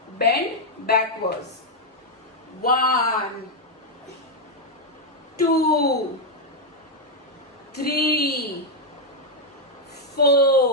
bend backwards. 1, 2, 3,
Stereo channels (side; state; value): both; normal; correlation 0.00